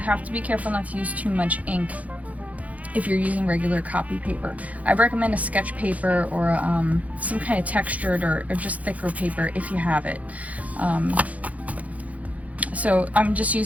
have to be careful not to use too much ink if you're using regular copy paper. I recommend a sketch paper or some kind of textured or just thicker paper if you have it. So I'm just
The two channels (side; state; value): left; late; 0.070 ms